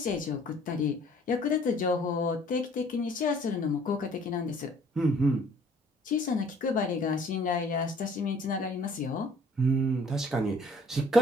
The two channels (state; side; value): normal; both; correlation 0.57